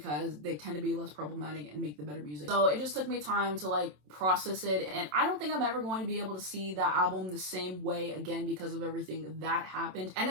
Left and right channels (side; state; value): left; late; 27 ms